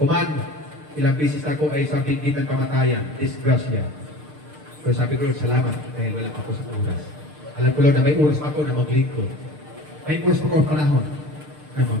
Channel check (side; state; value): left; late; 6.6 ms